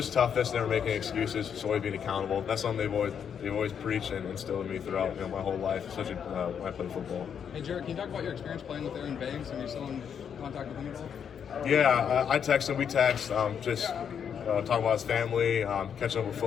toughness, never making excuses, just always being accountable. That's something they've always preached and instilled in me throughout my whole life, especially when I played football. Hey Jarrett, can you talk about your experience playing with Aaron Banks and you're still in contact with him at all? Yeah, I text him. We text, just talking about his family, catching up with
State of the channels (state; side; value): quieter; right; 7.8 dB